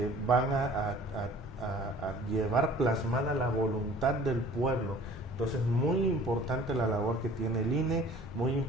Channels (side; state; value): both; normal; correlation 0.49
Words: van a llevar plasmada la voluntad del pueblo. Entonces, muy importante la labor que tiene el INE, muy